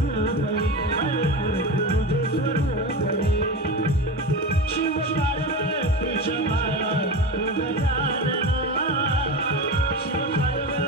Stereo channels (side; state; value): both; normal; correlation 0.25